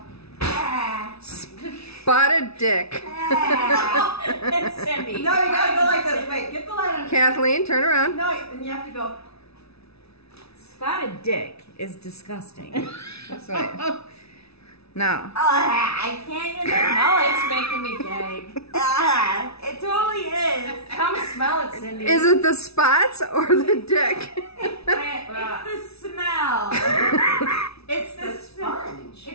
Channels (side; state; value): right; late; 0.79 ms